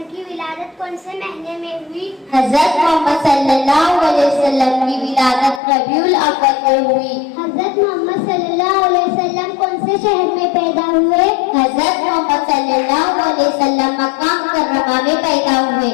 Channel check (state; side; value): drops out; right; at 5.6 s